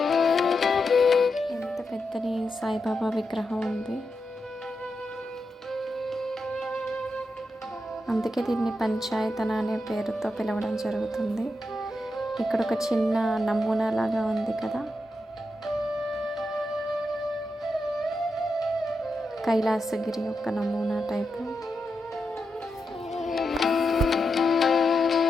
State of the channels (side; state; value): both; normal; correlation 0.87